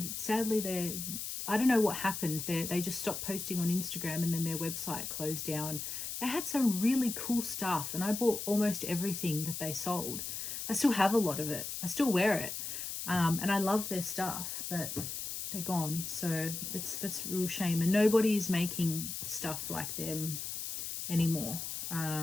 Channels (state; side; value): noise; left; hiss, 5 dB below the sound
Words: sadly, I don't know what happened. They just stopped posting on Instagram, and then their website closed down. They had some really cool stuff, and I bought almost everything that they sold. I still have a lot of it. I still wear it, and I love their stuff, but they're gone. So that's a real shame, and nobody's making stuff like them anymore.